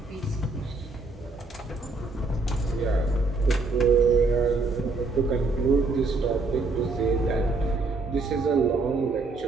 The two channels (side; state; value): left; quieter; 3.6 dB